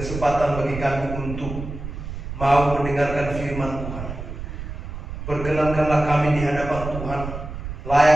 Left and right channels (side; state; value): right; noise; rumble, 8 dB below the sound